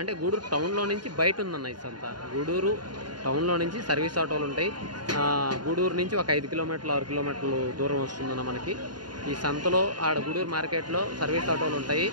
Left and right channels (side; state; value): left; late; 0.70 ms